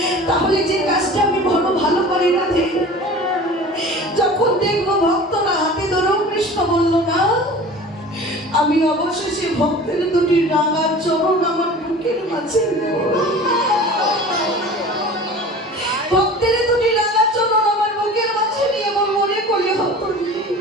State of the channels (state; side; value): normal; both; correlation 0.40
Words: তাহলে যে কাজটা আমি বড় ভালো করি না, যখন দেখবো ভক্তরা হাতে ধরেও কৃষ্ণ বললো না, আমি অবশেষে ভক্তের দুটি রাঙা চরণ আমার বুকের মাঝে নেব। ভক্তের দুটি রাঙা চরণ আমার বুকের মাঝে নিয়ে আমার মনে করলে হতো